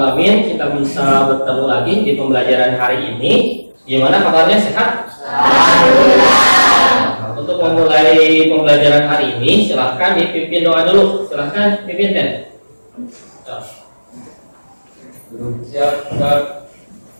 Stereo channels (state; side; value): inverted; both; correlation -1.00